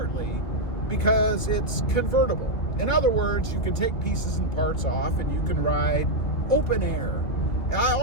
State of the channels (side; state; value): right; late; 2.5 ms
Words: because it's convertible. In other words, you can take pieces and parts off and you can ride open air. I